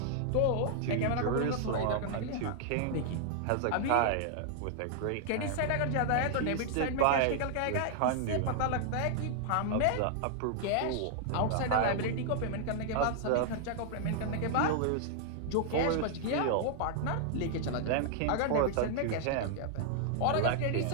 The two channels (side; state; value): both; different; correlation -0.01